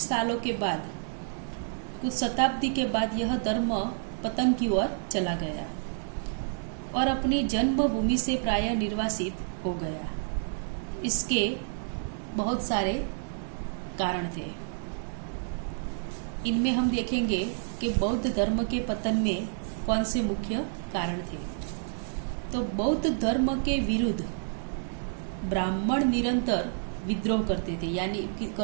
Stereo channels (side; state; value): left; silent; digital silence